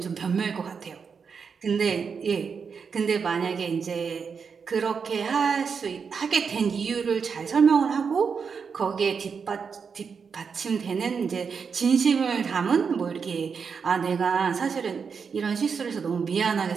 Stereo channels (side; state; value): left; quieter; 5.9 dB